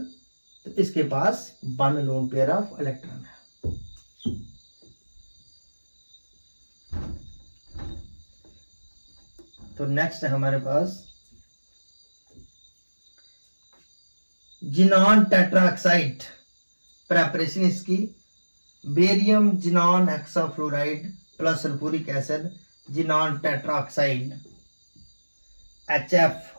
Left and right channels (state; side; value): inverted; both; correlation -1.00